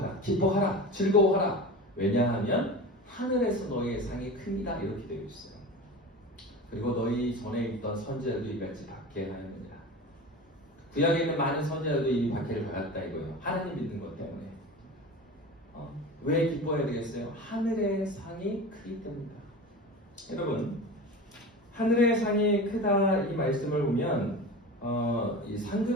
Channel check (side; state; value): both; normal; correlation 0.31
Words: 기뻐하라. 즐거워하라. 왜냐하면 하늘에서 너희의 상이 큽니다. 이렇게 되어 있어요. 그리고 너희 전에 있던 선지자들도 이같이 박해하였느니라. 구약에 있는 많은 선지자들도 이미 박해를 받았다 이거예요. 하나님 믿는 것 때문에. 왜 기뻐해야 되겠어요? 하늘의 상이 크기 때문이다. 여러분, 하늘의 상이 크다 이 말씀을 보면 이